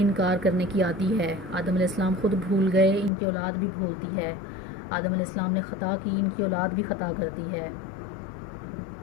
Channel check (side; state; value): right; drops out; at 3.1 s